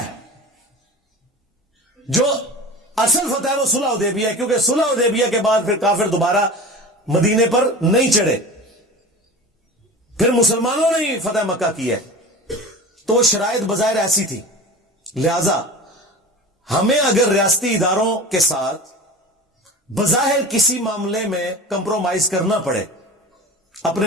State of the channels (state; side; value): normal; both; correlation 0.34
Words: جو اصل فتح ہے وہ صلح حدیبیہ ہے، کیونکہ صلح حدیبیہ کے بعد پھر کافر دوبارہ مدینے پر نہیں چڑھے، پھر مسلمانوں نے ہی فتح مکہ کی ہے، تو وہ شرائط بظاہر ایسی تھی، لہذا ہمیں اگر ریاستی اداروں کے ساتھ بظاہر کسی معاملے میں کمپرومائز کرنا پڑے